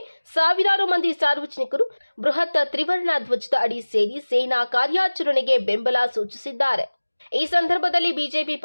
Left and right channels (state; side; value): inverted; both; correlation -1.00